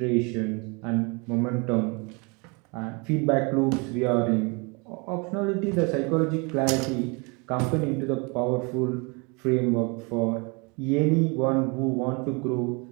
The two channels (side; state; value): left; quieter; 30.4 dB